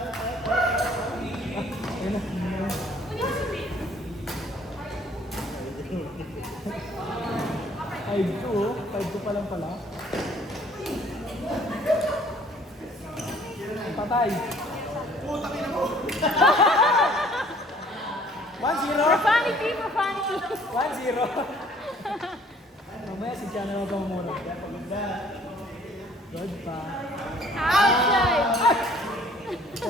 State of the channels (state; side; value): normal; both; correlation 0.57